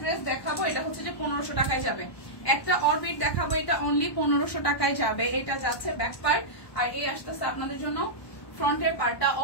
ড্রেস দেখাবো, এটা হচ্ছে যে 1500 টাকায় যাবে। একটা অরবিট দেখাবো, এটা অনলি 1500 টাকায় যাবে। এটা যাচ্ছে ব্যাক পার্ট, আর এই আসতেছে আপনাদের জন্য ফ্রন্টের পার্টটা।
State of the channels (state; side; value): late; right; 1.2 ms